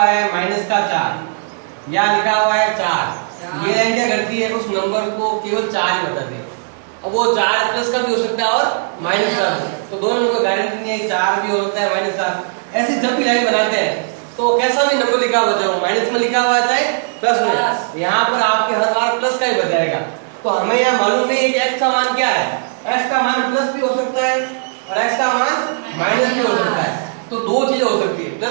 है -4, यहाँ लिखा हुआ है 4। ये लाइन क्या करती है? उस नंबर को केवल 4 ही बताती है। अब वो 4 प्लस का भी हो सकता है और माइनस का भी, तो दोनों को गारंटी नहीं है, 4 भी हो सकता है -4। ऐसे जब भी लाइन बनाते हैं तो कैसा भी नंबर लिखा हुआ है, माइनस में लिखा हुआ है चाहे प्लस में, यहाँ पर आपके हर बार प्लस का ही बताएगा। तो हमें यह मालूम नहीं है कि x का मान क्या है। x का मान प्लस भी हो सकता है और x का मान माइनस भी हो सकता है। तो दो चीजें हो सकती है,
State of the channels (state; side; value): silent; left; digital silence